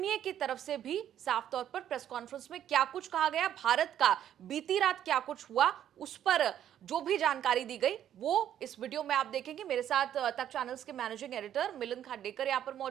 की तरफ से भी साफ तौर पर प्रेस कॉन्फ्रेंस में क्या कुछ कहा गया, भारत का बीती रात क्या कुछ हुआ, उस पर जो भी जानकारी दी गई वो इस वीडियो में आप देखेंगे। मेरे साथ तक चैनल्स के मैनेजिंग एडिटर मिलिंद खांडेकर यहाँ पर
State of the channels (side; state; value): left; quieter; 10.6 dB